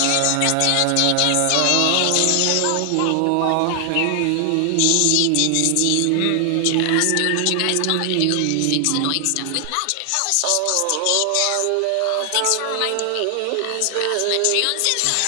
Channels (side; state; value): both; different; correlation 0.00